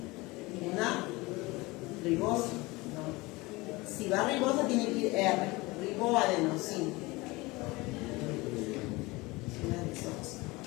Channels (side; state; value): right; quieter; 22.6 dB